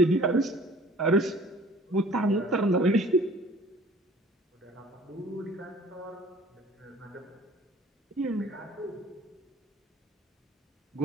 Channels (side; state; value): both; normal; correlation 0.50